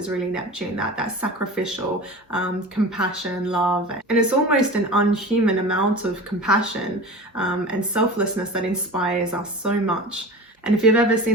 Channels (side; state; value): both; normal; correlation 0.34